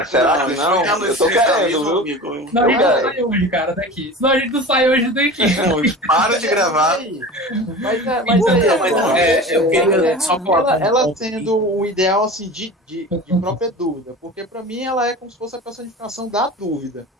Será que não? Eu tô querendo, viu? Não, a gente não sai hoje, cara, daqui. Senão a gente não sai hoje daqui. Para de gravar. eu queria só ela tendo o ideal assim de própria dúvida, porque pra mim ela é como se fosse a personificação da dúvida.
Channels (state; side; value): normal; both; correlation 0.34